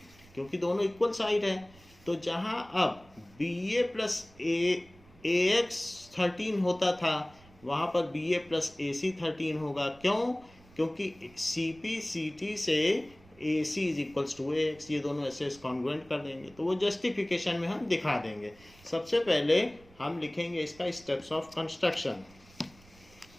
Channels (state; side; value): noise; right; rumble, 25 dB below the sound